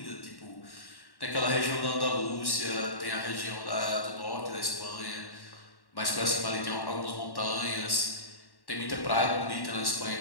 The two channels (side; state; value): right; late; 1.1 ms